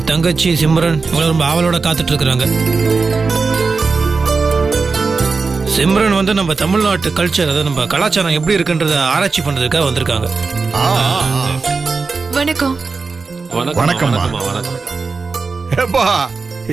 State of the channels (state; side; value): quieter; left; 4.5 dB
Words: தங்கச்சி சிம்ரன் இவங்க ரொம்ப ஆவலோட காத்துட்டு இருக்கிறாங்க. சிம்ரன் வந்து நம்ம தமிழ்நாட்டு கல்ச்சர், அதாவது நம்ம கலாச்சாரம் எப்படி இருக்குன்றத ஆராய்ச்சி பண்றதுக்காக வந்திருக்காங்க. வணக்கம். வணக்கம்.